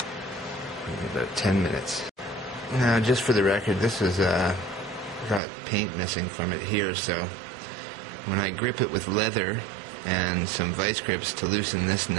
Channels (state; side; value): drops out; left; at 5.4 s